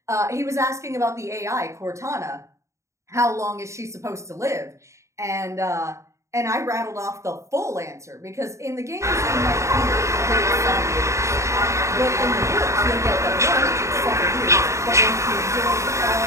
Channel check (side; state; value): left; late; 0.14 ms